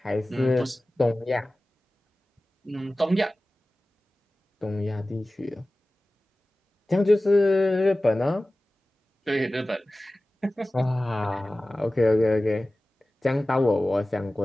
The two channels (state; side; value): normal; both; correlation 0.97